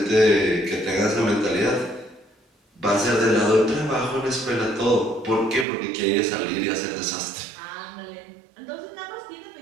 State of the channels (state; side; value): drops out; left; at 5.7 s